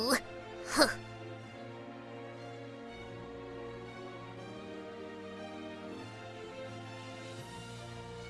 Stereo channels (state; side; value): identical; both; correlation 1.00